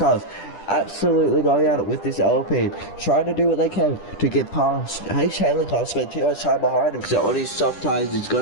absolutely going at it with this Alpine, trying to do what they can to get past. H. Taylor can't spend too much time behind him, so on his soft tires he's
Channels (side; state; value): right; late; 10 ms